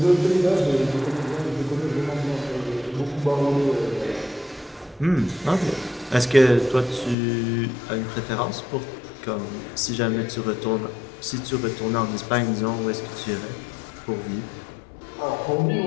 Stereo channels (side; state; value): right; drops out; at 7.2 s